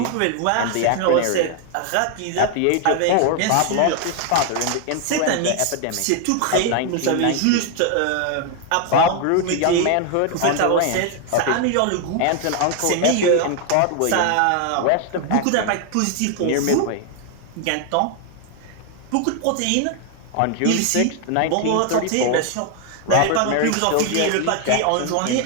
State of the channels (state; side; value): different; both; correlation 0.00